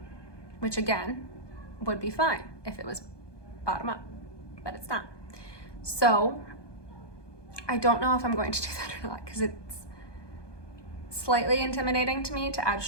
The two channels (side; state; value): right; late; 1.2 ms